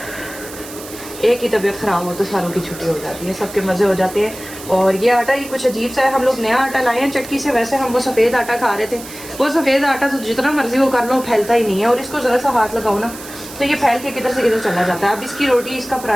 एक की तबीयत ख़राब हो तो सारों की छुट्टी हो जाती है, सबके मज़े हो जाते हैं। और ये आटा ही कुछ अजीब सा है, हम लोग नया आटा लाए हैं चक्की से। वैसे हम वो सफ़ेद आटा खा रहे थे, वो सफ़ेद आटा तो जितना मर्जी वो कर लो फैलता ही नहीं है, और इसको ज़रा सा हाथ लगाओ ना तो ये फैल के किधर से किधर चला जाता है। अब इसकी रोटी, इसका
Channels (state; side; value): noise; right; hiss, 14 dB below the sound